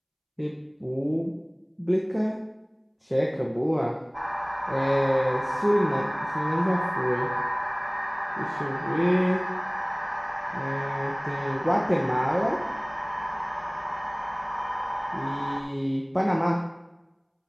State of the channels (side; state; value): both; identical; correlation 1.00